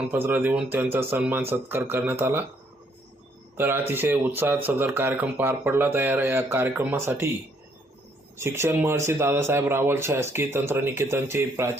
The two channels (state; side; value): normal; both; correlation 0.68